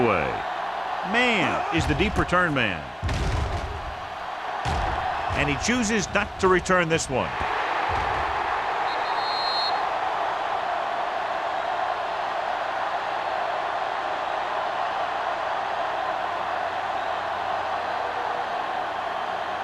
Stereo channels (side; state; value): both; identical; correlation 1.00